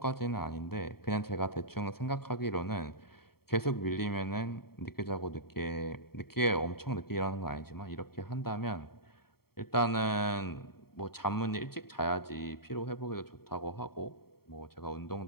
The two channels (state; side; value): late; right; 0.95 ms